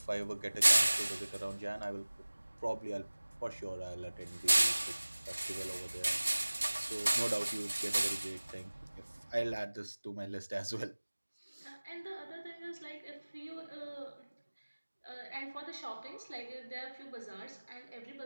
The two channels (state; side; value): inverted; both; correlation -1.00